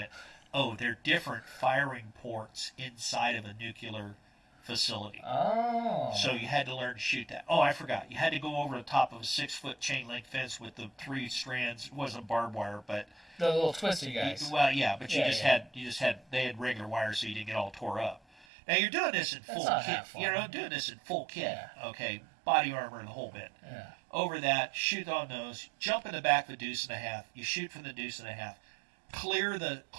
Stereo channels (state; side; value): drops out; left; at 18.4 s